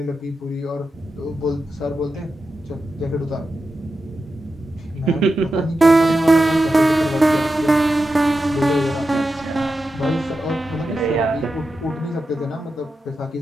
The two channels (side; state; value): both; normal; correlation 0.90